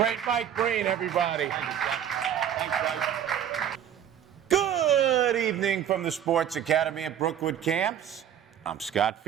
Mike Breen, everybody. Good evening from the Sports Academy at Brookwood Camps. I'm Scott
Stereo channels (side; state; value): left; quieter; 9.6 dB